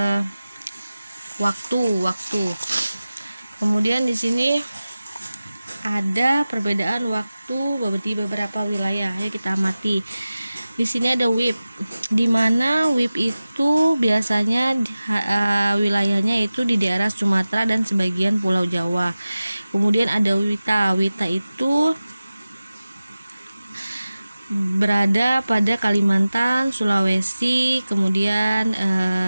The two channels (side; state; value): both; inverted; correlation -0.96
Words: waktu. Kemudian di sini ada perbedaan waktu di beberapa wilayah. Ayo kita amati. Di sini ada WIB, di mana WIB itu biasanya wilayahnya itu di daerah Sumatera dan sebagian Pulau Jawa. Kemudian ada WITA. WITA itu berada pada Kalimantan, Sulawesi, kemudian